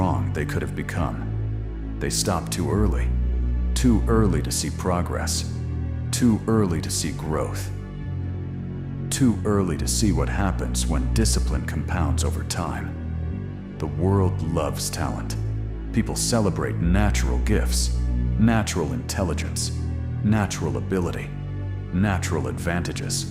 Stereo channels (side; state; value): both; identical; correlation 1.00